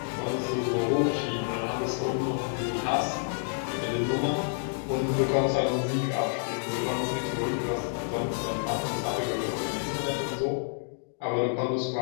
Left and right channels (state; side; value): silent; right; 59 dB below the other